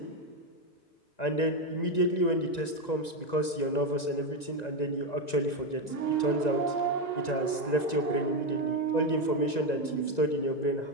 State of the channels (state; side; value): late; right; 1.9 ms